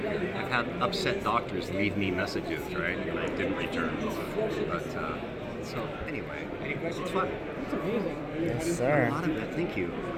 I've had upset doctors leave me messages, right, and I didn't return. But so anyway, it's fun. Yes, A sir. lot of it, thank you.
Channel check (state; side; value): identical; both; correlation 1.00